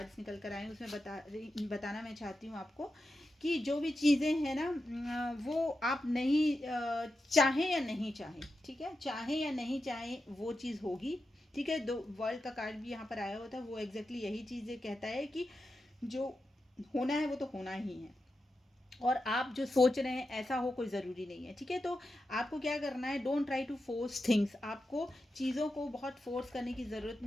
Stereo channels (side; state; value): both; normal; correlation 0.89